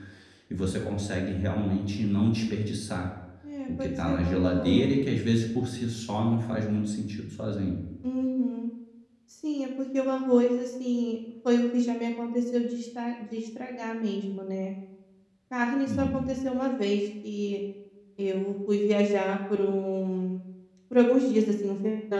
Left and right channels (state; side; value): identical; both; correlation 1.00